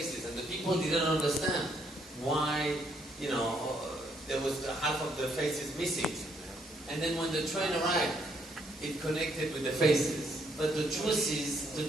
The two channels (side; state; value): both; normal; correlation 0.71